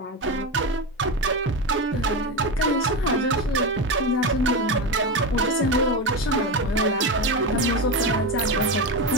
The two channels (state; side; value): normal; both; correlation 0.17